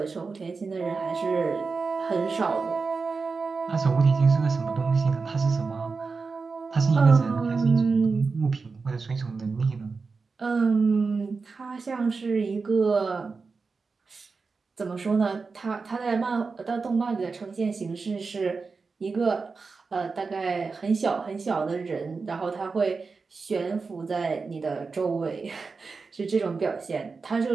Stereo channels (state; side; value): quieter; left; 4.5 dB